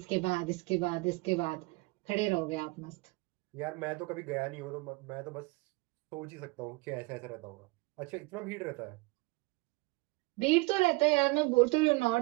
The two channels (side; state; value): left; quieter; 25.2 dB